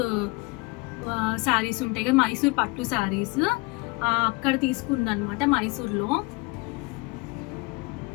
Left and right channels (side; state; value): right; quieter; 25.2 dB